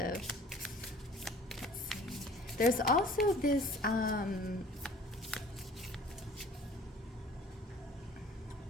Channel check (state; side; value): normal; both; correlation 0.49